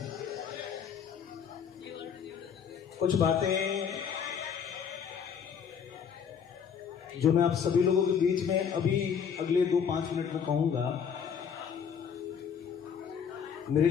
कुछ बातें जो मैं आप सभी लोगों के बीच में अभी अगले 2-5 मिनट में कहूंगा, मेरे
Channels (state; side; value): quieter; right; 7.3 dB